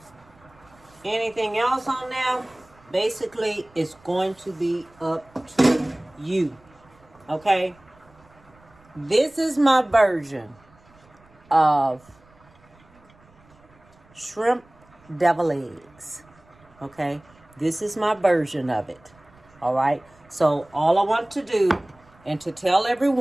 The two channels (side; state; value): right; noise; rumble, 29 dB below the sound